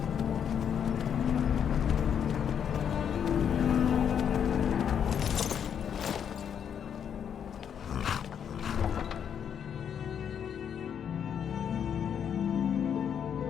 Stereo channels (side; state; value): right; quieter; 8.2 dB